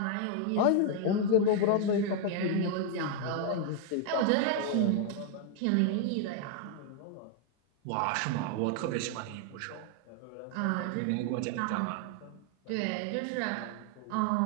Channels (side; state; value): both; different; correlation 0.01